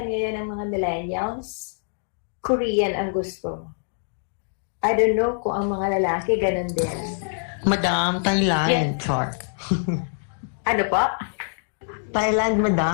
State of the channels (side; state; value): right; silent; digital silence